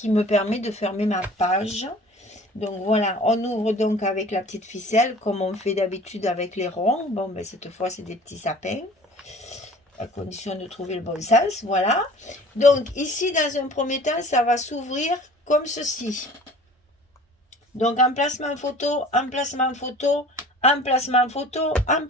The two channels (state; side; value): normal; both; correlation 0.46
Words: me permet de fermer ma page. Donc voilà, on ouvre donc avec la petite ficelle comme on fait d'habitude avec les ronds. Bon, ben cette fois, c'est des petits sapins, à condition de trouver le bon sens. Voilà. Donc ici, dans un premier temps, ça va s'ouvrir comme ceci. Donc emplacement photo, emplacement photo, emplacement photo,